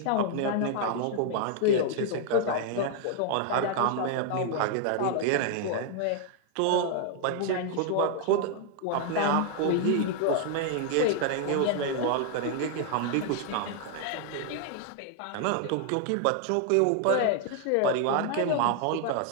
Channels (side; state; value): both; different; correlation 0.00